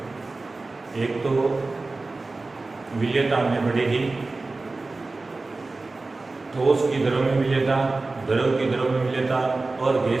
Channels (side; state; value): left; quieter; 3.4 dB